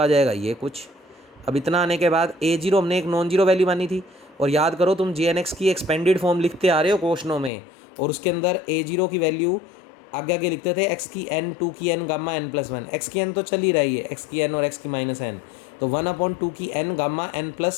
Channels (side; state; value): right; drops out; at 7.5 s